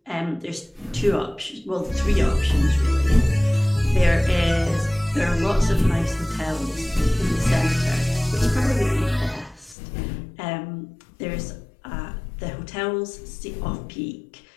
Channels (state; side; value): drops out; right; at 9.8 s